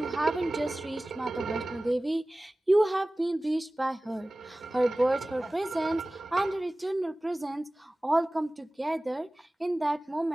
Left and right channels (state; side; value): normal; both; correlation 0.98